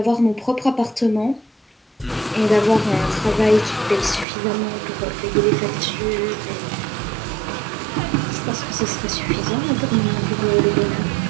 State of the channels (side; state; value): left; drops out; at 4.2 s